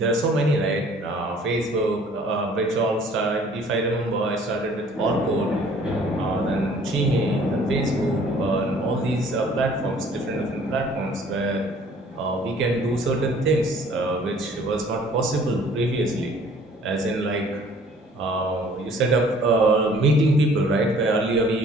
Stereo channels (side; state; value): both; normal; correlation 0.55